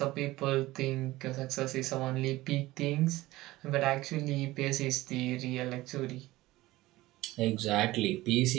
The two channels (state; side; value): quieter; left; 18.2 dB